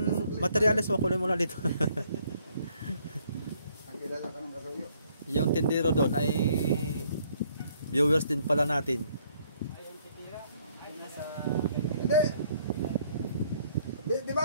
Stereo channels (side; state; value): both; inverted; correlation -0.66